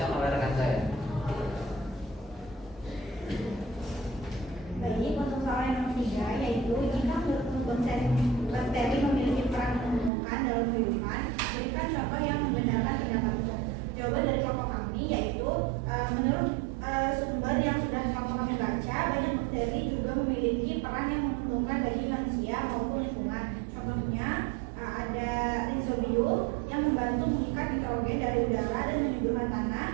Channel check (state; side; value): drops out; left; at 10.1 s